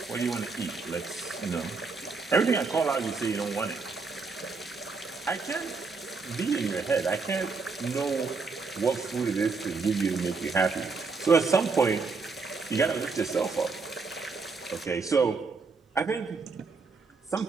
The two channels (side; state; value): left; quieter; 4.5 dB